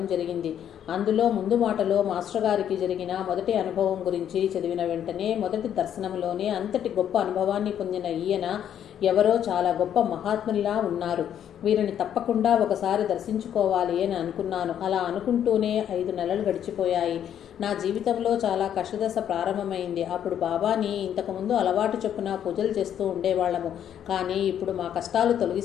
జరిగింది. అందులో ముందు మాటలో మాస్టర్ గారికి జరిగిన మొదటి అనుభవం గురించి చదివిన వెంటనే మొదటి దర్శనంలోనే అంతటి గొప్ప అనుభవాన్ని పొందిన ఈయన ఎవరో చాలా గొప్ప మహాత్మునిలా ఉన్నారు. వీరిని తప్పకుండా ఒకసారి దర్శించుకోవాలి అని అనుకున్నాను. అలా అనుకుంటూనే 5 నెలలు గడిచిపోయాయి. నా జీవితంలో చాలా కష్టదశ ప్రారంభమైంది. అప్పుడు బాబాని ఇంతకుముందు అలవాటు చొప్పున పూజలు చేస్తూ ఉండేవాళ్ళము. కానీ ఇప్పుడు మా కష్టాలు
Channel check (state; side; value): quieter; right; 9.7 dB